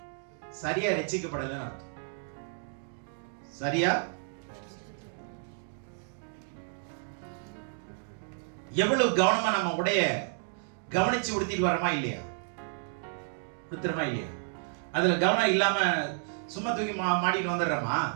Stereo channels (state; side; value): silent; left; 57 dB below the other